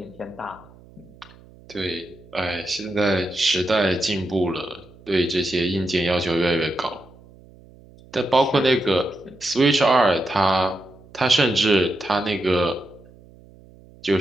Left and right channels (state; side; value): noise; right; hum, 24 dB below the sound